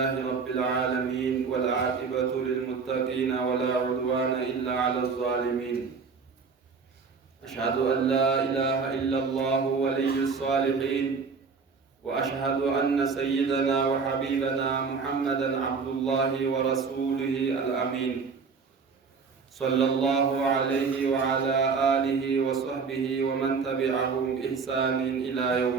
رب العالمين، والعاقبة للمتقين ولا عدوان إلا على الظالمين. أشهد أن لا إله إلا الله ولي الصالحين، وأشهد أن سيدنا وحبيبنا محمدا عبد الله ورسوله الأمين، صلى الله عليه وعلى آله وصحبه ومن تبعهم بإحسان إلى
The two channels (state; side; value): quieter; left; 5.2 dB